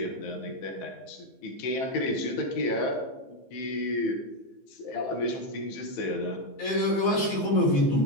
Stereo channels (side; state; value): right; late; 15 ms